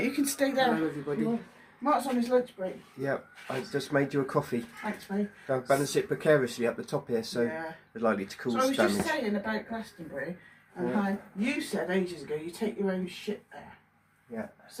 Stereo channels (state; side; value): identical; both; correlation 1.00